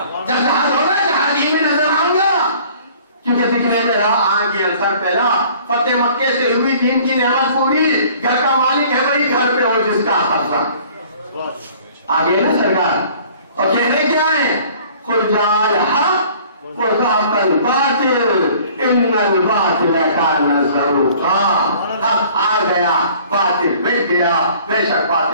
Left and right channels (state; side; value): inverted; both; correlation -0.52